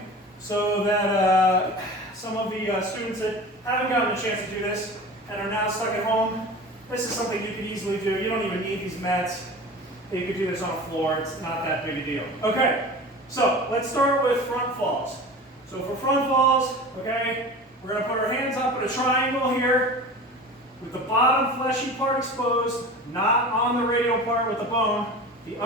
so that some of the students that haven't gotten a chance to do this and are now stuck at home, this is something you can easily do. You don't even need these mats. You could do this on a floor. It's not that big a deal. Okay, so let's start with front falls. So for front falls, okay, we're going to put our hands up in a triangle here with the bottom fleshy part exposed, not on the radial part with the bone, the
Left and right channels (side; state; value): both; normal; correlation 0.35